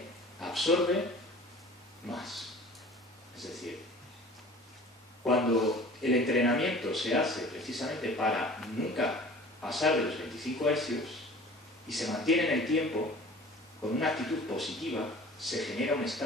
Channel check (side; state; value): both; normal; correlation 0.44